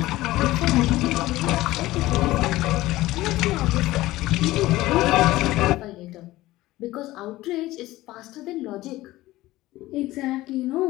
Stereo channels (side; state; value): right; quieter; 17.4 dB